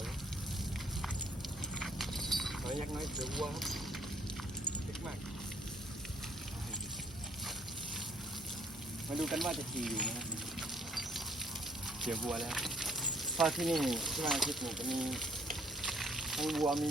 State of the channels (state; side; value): normal; both; correlation 0.64